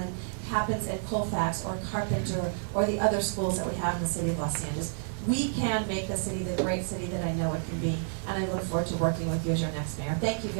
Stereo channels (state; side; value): silent; left; 58 dB below the other